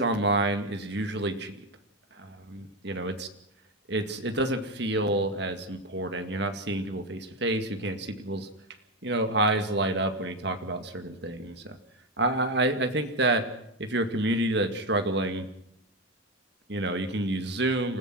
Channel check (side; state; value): both; normal; correlation 0.12